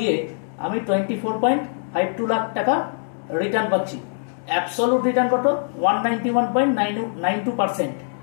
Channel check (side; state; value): right; silent; digital silence